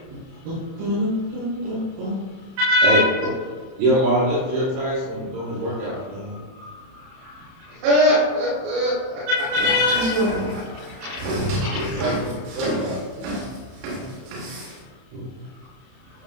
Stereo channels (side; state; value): left; late; 31 ms